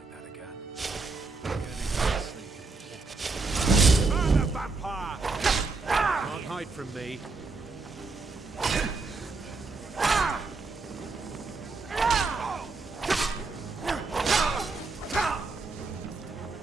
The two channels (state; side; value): quieter; left; 3.9 dB